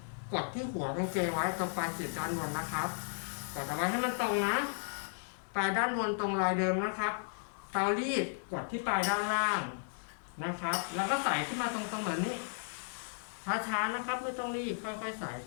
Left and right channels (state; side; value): silent; right; 55 dB below the other